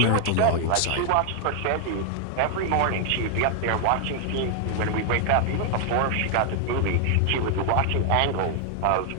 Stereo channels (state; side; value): different; both; correlation 0.00